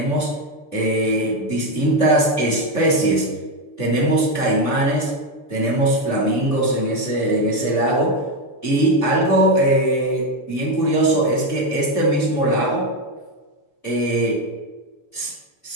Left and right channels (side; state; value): right; late; 6.9 ms